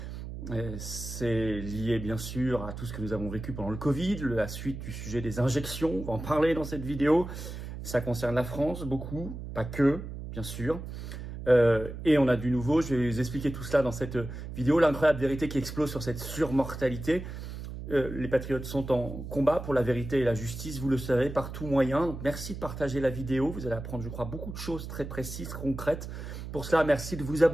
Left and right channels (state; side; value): noise; right; hum, 9 dB below the sound